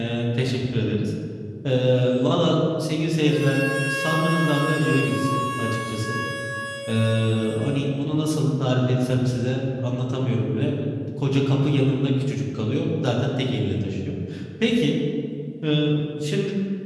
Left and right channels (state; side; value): identical; both; correlation 1.00